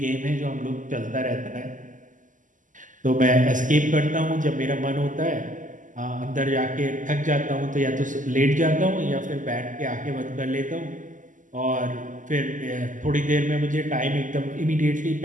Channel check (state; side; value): late; left; 0.37 ms